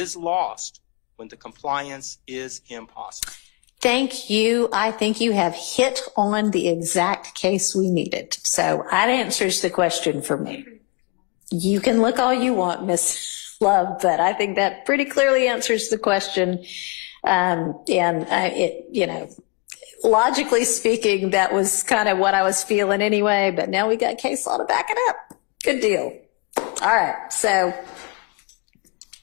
lost when the compliance is impossible. Thank you. I think you have hit on the exact case we needed. So that answers the question for me. You can look all you want, Miss Love, but I think that pretty clearly answers the question. Logically speaking, that was kind of what I was feeling anyway, but now we got case law to back it up. Good deal. All right. So.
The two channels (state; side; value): quieter; right; 29.5 dB